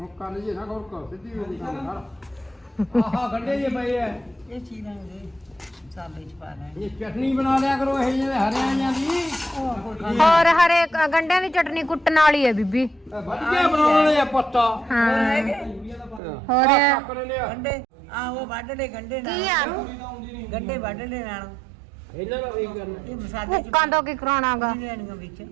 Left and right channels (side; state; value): left; drops out; at 16.2 s